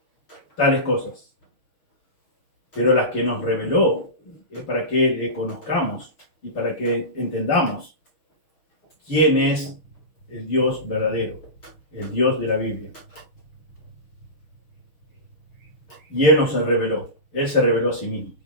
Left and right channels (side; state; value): right; late; 6.5 ms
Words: tales cosas. Pero las que nos reveló es para que le conozcamos y para que entendamos quién es el Dios verdadero, el Dios de la Biblia. Y Él nos reveló, Él se reveló a sí mismo